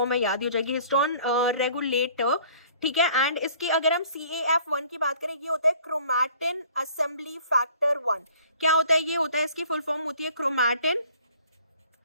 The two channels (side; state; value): both; inverted; correlation -0.53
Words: है, याद ही हो जाएगी, हिस्टोन रेगुलेटर, ठीक है। एंड इसकी अगर हम CAF1 की बात करें, ये होता है क्रोमैटिन असेंबली फैक्टर 1। क्या होता है? ये होता है, इसकी फुल फॉर्म होती है क्रोमैटिन